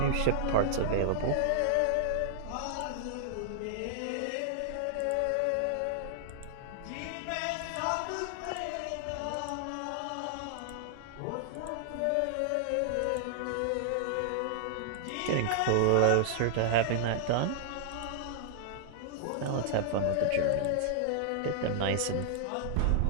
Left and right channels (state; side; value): different; both; correlation -0.01